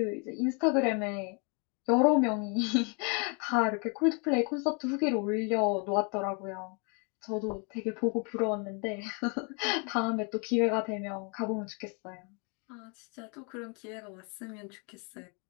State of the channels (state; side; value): quieter; right; 35.7 dB